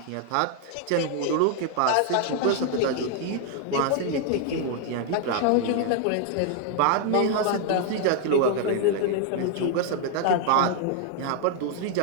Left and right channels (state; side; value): different; both; correlation 0.00